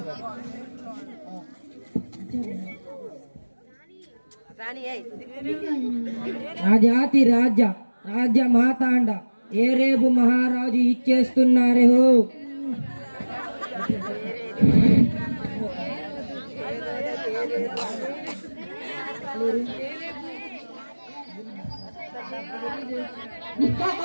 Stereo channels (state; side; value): inverted; both; correlation -1.00